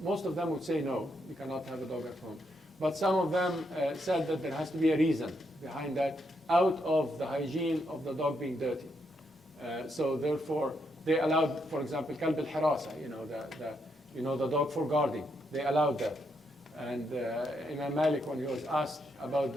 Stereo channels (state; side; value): normal; both; correlation 0.78